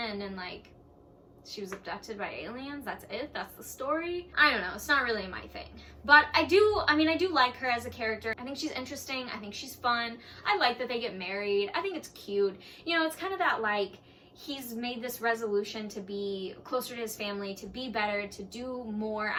and, like, she was abducted by aliens. That's it. That's the story. I don't know. It's not really my thing. But I do like her as a character. I think she's interesting. I think she's fun. I like that they get married. I think it's cute. You know, it's kind of that, like, he's made this resolution to be closer to his family, to be better, to do more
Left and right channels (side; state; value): both; identical; correlation 1.00